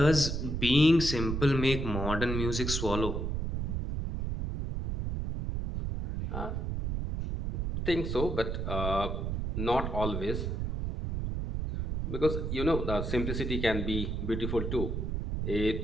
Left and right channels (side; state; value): right; noise; rumble, 2 dB below the sound